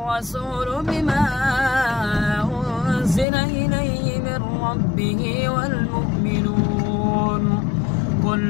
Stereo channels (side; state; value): right; drops out; at 3.2 s